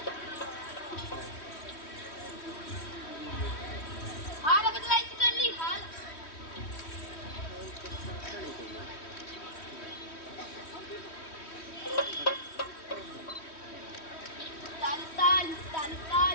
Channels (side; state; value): right; late; 3.2 ms